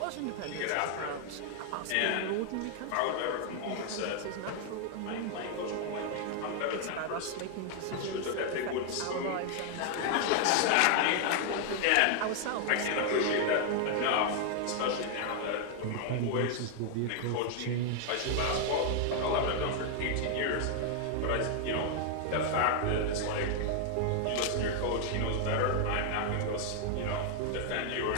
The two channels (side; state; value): both; different; correlation 0.00